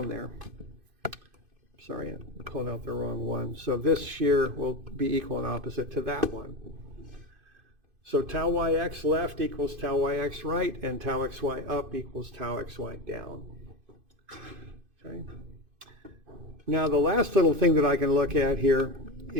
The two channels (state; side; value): late; left; 2.5 ms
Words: there. Sorry, I'm pulling out the wrong one. So this shear will be equal and opposite to that one. So tau yx left equals tau yx right, and tau xy up equals tau xy down. Okay. Now the last little thing that I can look at here